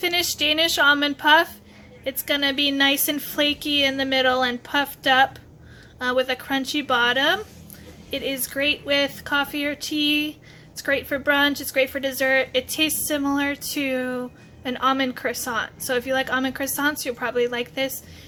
Danish Almond Puff. It's going to be nice and flaky in the middle and puffed up with a crunchy bottom. It is great with coffee or tea. It's great for brunch. It's great for dessert. It tastes similar to an almond croissant. So if you like almond croissants, you'll probably like this.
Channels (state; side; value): identical; both; correlation 1.00